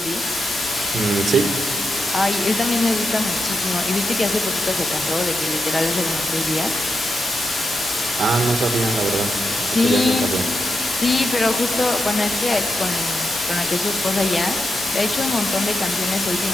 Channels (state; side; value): normal; both; correlation 0.85